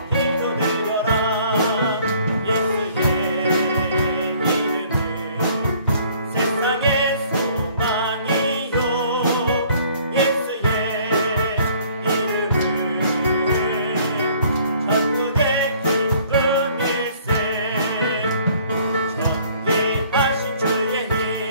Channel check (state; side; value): inverted; both; correlation -0.58